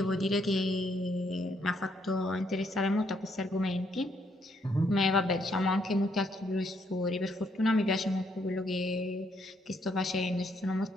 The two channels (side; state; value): both; normal; correlation 0.72